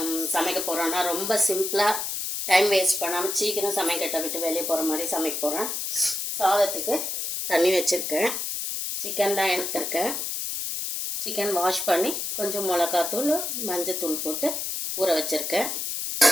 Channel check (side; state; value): left; noise; hiss, 3 dB below the sound